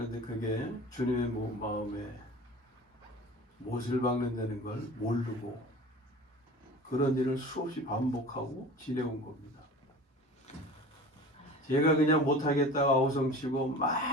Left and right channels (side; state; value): both; normal; correlation 0.38